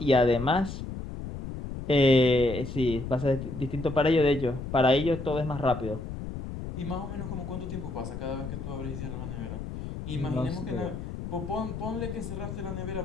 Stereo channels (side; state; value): left; noise; rumble, 7 dB below the sound